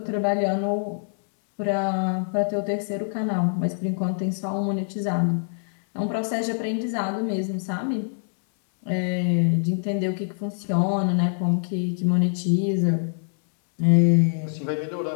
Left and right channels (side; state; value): right; silent; digital silence